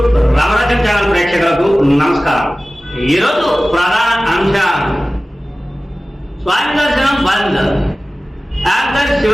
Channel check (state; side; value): normal; both; correlation 0.97